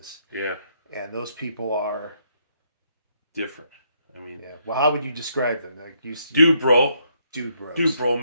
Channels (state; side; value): inverted; both; correlation -0.73